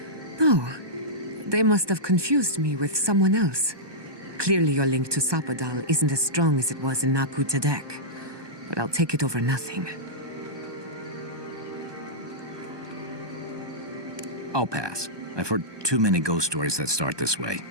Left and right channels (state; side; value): late; left; 1.2 ms